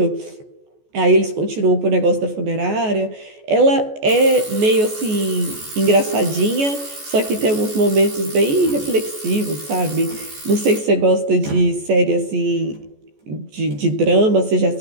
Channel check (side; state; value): left; late; 14 ms